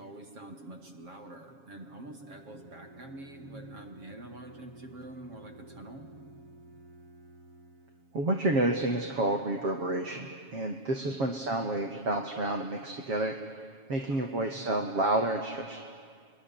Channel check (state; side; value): late; left; 7.3 ms